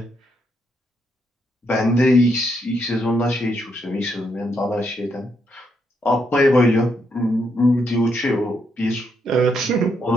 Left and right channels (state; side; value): normal; both; correlation 0.77